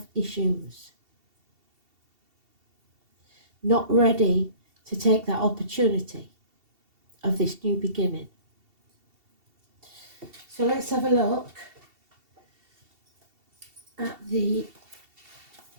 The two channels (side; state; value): left; late; 2.7 ms